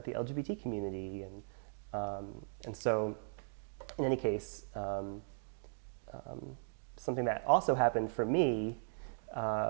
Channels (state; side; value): silent; left; digital silence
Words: LGBT community? And so, in any case, something that also happened for me